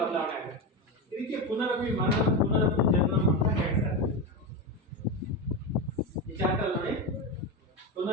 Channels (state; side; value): normal; both; correlation 0.16